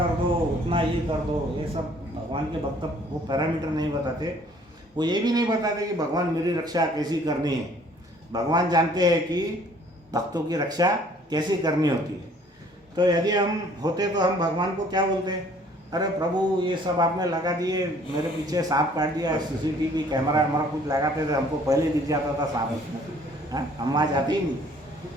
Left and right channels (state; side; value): normal; both; correlation 0.57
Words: दो, उतना ये कर दो, ये सब भगवान के भक्त वो पैरामीटर नहीं बताते। वो ये भी नहीं बताते कि भगवान मेरी रक्षा कैसी करनी है। भगवान जानते हैं कि भक्तों की रक्षा कैसी करनी होती है। तो यदि हम होते तो हम भगवान को क्या बोलते, अरे प्रभु ये सब आपने लगा दिए, मेरे पीछे सांप काट दिया, CCTV कैमरा हमारा कुछ लगाते थे, हमको पहले दिख जाता था सांप उसमें, हम वहाँ जाते ही नहीं।